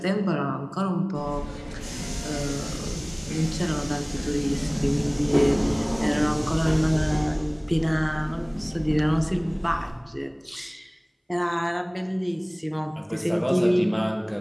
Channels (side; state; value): both; identical; correlation 1.00